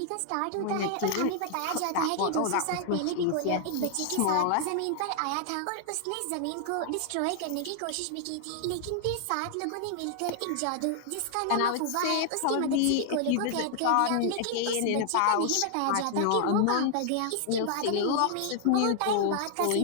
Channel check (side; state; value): both; different; correlation 0.00